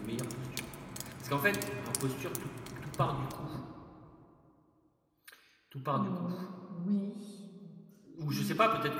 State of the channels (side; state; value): both; identical; correlation 1.00